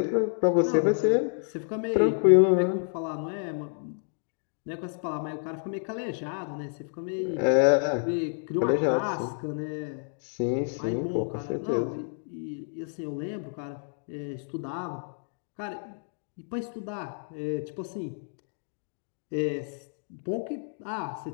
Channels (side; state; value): right; silent; digital silence